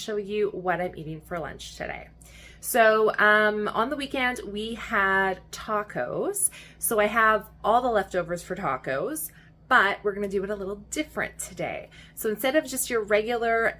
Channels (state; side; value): identical; both; correlation 1.00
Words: you what I'm eating for lunch today. So on the weekend we had tacos. So I have all the leftovers for tacos, but we're gonna do it a little different today. So instead of just your regular